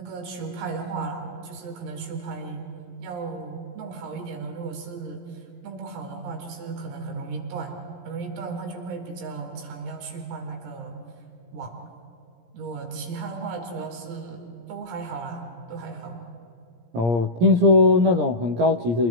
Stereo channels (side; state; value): left; late; 17 ms